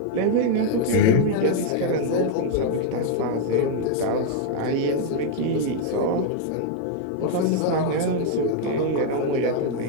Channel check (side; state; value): both; different; correlation 0.00